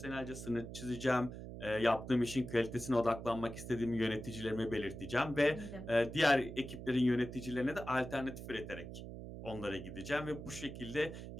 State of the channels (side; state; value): right; noise; hum, 10 dB below the sound